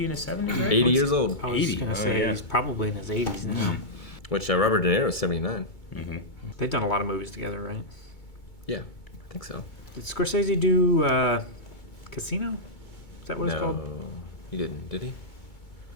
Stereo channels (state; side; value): late; right; 2.2 ms